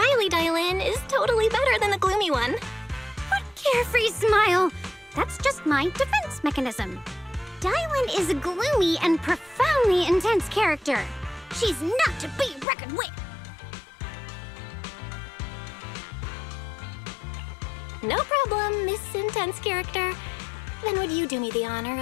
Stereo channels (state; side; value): drops out; right; at 12.7 s